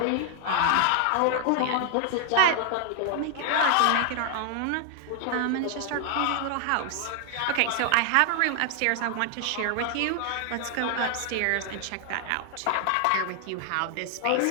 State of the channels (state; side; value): different; both; correlation 0.00